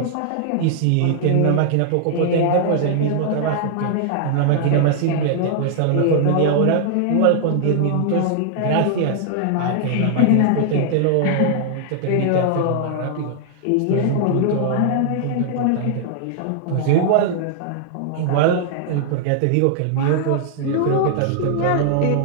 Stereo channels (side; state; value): both; different; correlation -0.01